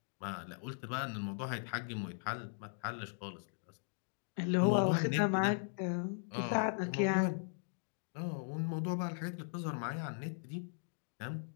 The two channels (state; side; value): silent; right; digital silence